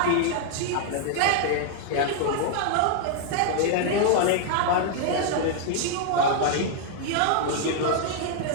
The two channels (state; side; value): different; both; correlation 0.00